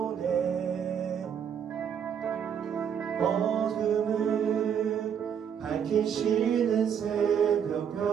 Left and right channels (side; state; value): left; quieter; 8.1 dB